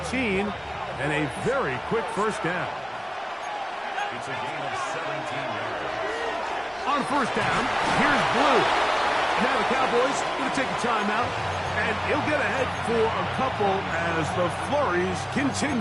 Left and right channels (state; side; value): identical; both; correlation 1.00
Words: and a very quick 1st down. It's a gain of 17 yards. On 1st down, here's Blue. Now the Cowboys going to take a timeout, and he'll get ahead for a couple as the flurries